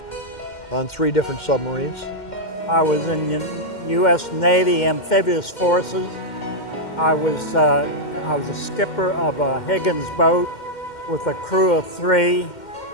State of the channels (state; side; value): late; right; 2.1 ms